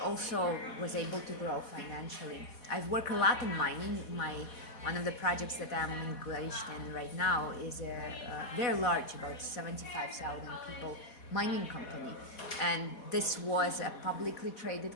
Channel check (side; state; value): right; late; 4.1 ms